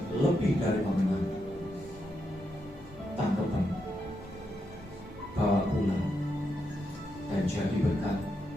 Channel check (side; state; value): both; normal; correlation 0.83